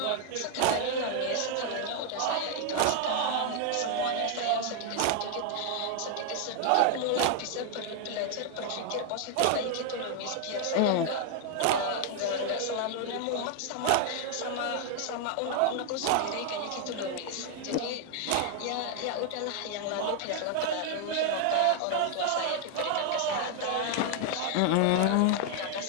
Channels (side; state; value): both; different; correlation 0.00